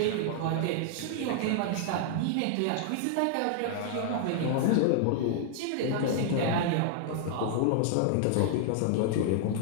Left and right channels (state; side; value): different; both; correlation -0.01